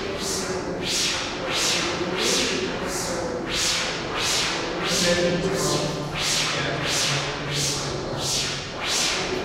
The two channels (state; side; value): identical; both; correlation 1.00